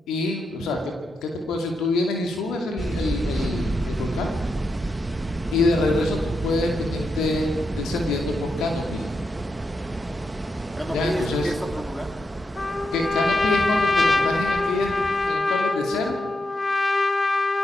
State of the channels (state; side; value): normal; both; correlation 0.84